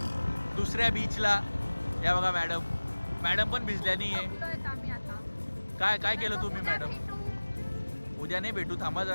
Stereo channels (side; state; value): both; inverted; correlation -1.00